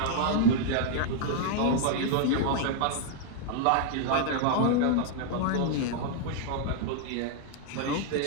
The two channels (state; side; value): different; both; correlation 0.00